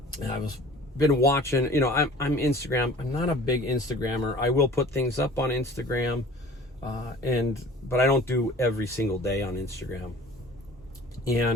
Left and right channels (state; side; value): normal; both; correlation 0.45